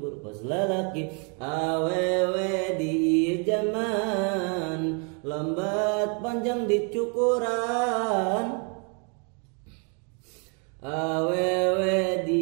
kos lalaki awewe di zaman lambat panjang dicukuran awewe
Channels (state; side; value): quieter; left; 37.9 dB